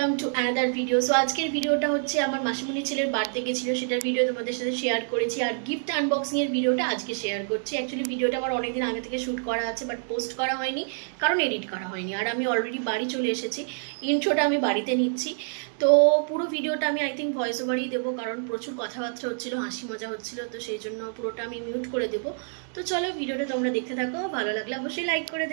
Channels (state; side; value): silent; left; digital silence